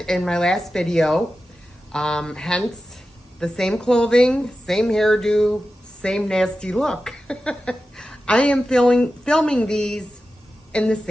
in my last video, hence the same clothing, same hairdo, same nasty look. I am filming these in the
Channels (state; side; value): normal; both; correlation 0.93